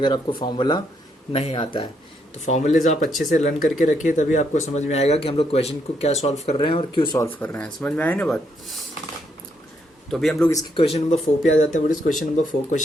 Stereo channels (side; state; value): both; normal; correlation 0.75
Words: अगर आपको फार्मूला नहीं आता है। तो फार्मूलेज आप अच्छे से लर्न करके रखिए, तभी आपको समझ में आएगा कि हम लोग क्वेश्चन को क्या सॉल्व कर रहे हैं और क्यों सॉल्व कर रहे हैं। समझ में आए ना बात। तो अभी हम लोग इसके क्वेश्चन नंबर 4 पे आ जाते हैं। What is question number 4?